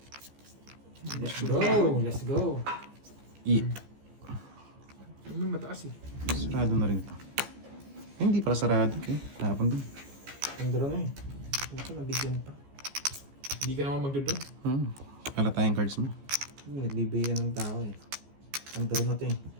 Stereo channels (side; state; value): left; late; 14 ms